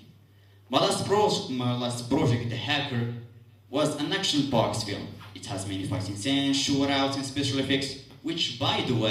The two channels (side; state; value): both; identical; correlation 1.00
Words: My last project, The Hacker, was an action-packed film. It has many fighting scenes, shootouts, and special effects, which, by the